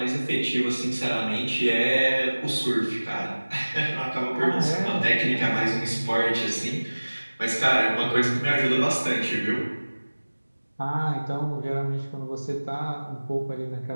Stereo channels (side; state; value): both; inverted; correlation -1.00